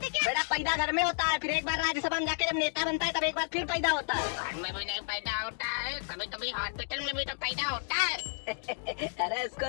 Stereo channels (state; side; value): silent; right; digital silence